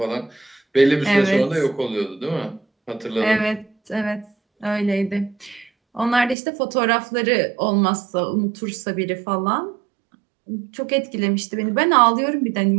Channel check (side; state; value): left; drops out; at 6.4 s